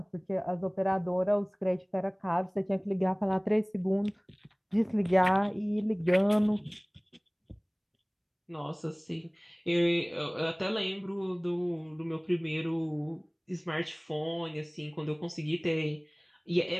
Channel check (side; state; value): both; identical; correlation 1.00